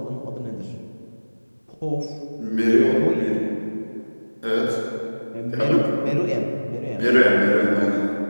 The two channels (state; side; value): inverted; both; correlation -1.00